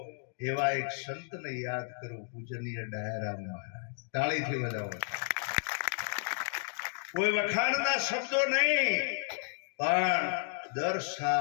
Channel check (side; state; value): right; silent; 56 dB below the other